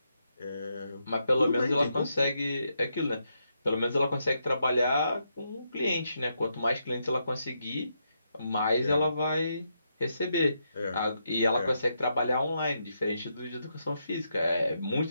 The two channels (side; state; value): both; inverted; correlation -0.81